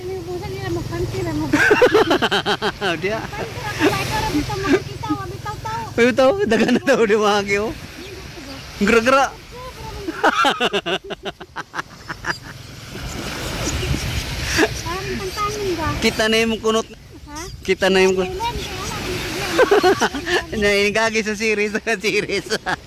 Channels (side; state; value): both; identical; correlation 1.00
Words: ni busan nila magpantira mo. Dia. Kita Bitaw, dagan na daw di mahagi oh. Gra-gra. Kita na yung kunot. Kita na yung kunot. Nainigagi sa series.